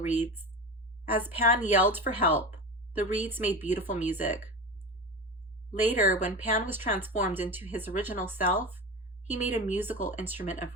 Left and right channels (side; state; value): both; normal; correlation 0.26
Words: As Pan yelled for help, the reeds made beautiful music. Later, when Pan was transformed into his original self, he made a musical instrument of